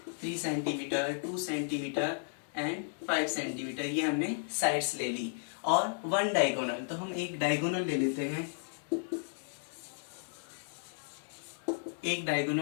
3 centimetre, 2 centimetre and 5 centimetre, ये हमने साइड्स ले ली। और 1 डायगोनल, तो हम एक डायगोनल ले लेते हैं। एक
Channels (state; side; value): silent; right; digital silence